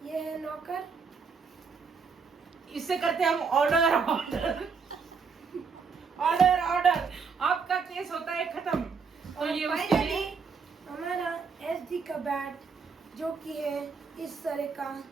ये है नॉकर। इससे करते हम ऑर्डर ऑर्डर ऑर्डर ऑर्डर। आपका केस होता है खत्म। तो और ये उसके फाइनली लिए हमारा एसडी का बैट जो कि है इस तरह का।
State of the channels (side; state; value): left; quieter; 5.4 dB